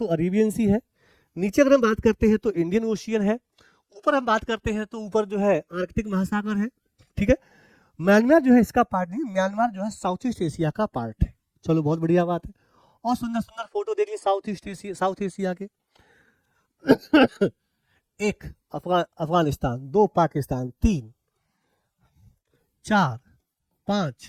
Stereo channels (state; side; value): identical; both; correlation 1.00